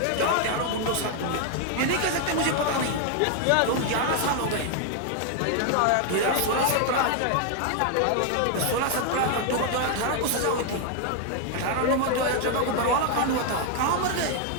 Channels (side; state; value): both; different; correlation 0.00